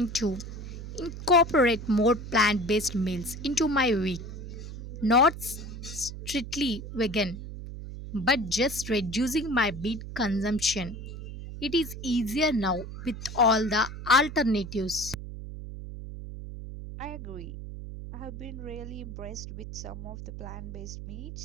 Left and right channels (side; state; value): right; noise; hum, 10 dB below the sound